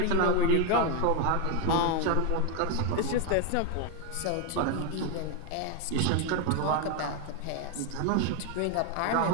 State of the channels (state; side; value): different; both; correlation 0.01